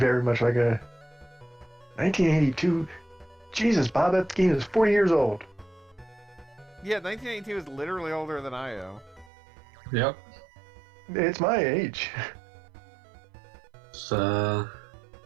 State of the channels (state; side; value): drops out; left; at 9.3 s